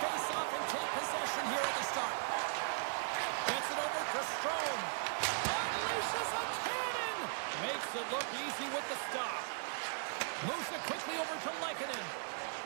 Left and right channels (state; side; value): silent; left; digital silence